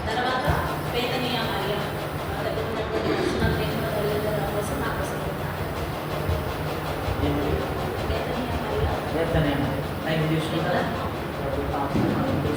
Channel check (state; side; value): identical; both; correlation 1.00